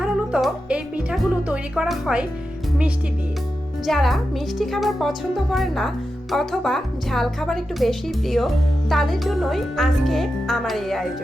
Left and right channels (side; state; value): both; normal; correlation 0.90